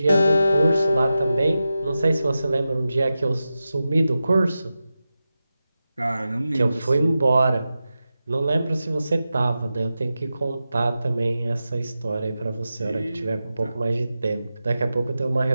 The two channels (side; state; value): both; inverted; correlation -0.92